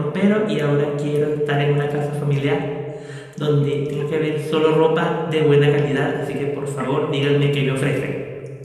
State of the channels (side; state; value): both; identical; correlation 1.00